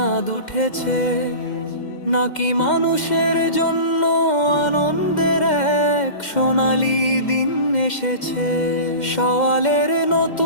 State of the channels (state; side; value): late; right; 2.1 ms